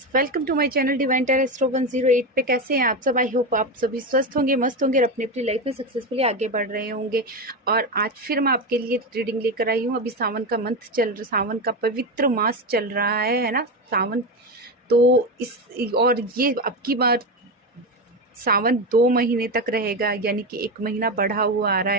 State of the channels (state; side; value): normal; both; correlation 0.16